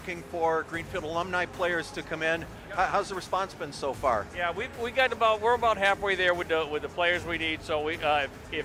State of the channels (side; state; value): both; identical; correlation 1.00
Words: for Greenfield alumni players to come in. Yep. How's the response been so far? Yeah, we're about halfway there with the players we need. So